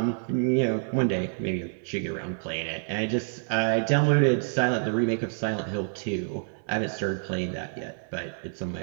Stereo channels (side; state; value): left; silent; digital silence